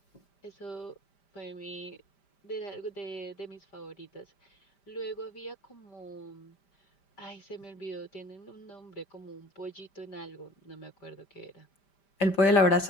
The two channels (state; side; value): late; right; 5.1 ms